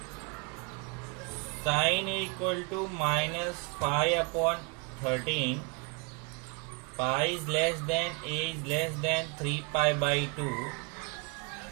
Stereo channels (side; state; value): left; quieter; 32.7 dB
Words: sine A equal to -5/13, pi is less than a is less than 3π/2,